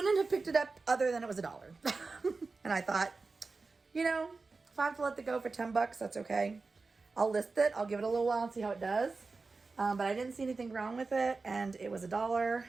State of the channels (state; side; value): quieter; left; 4.0 dB